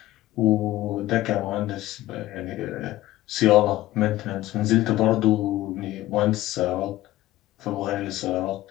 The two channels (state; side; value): quieter; right; 16.1 dB